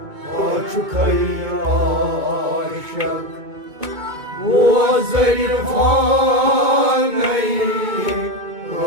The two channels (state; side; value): late; left; 2.2 ms